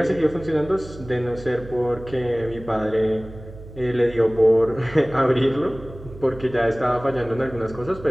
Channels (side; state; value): right; noise; hum, 16 dB below the sound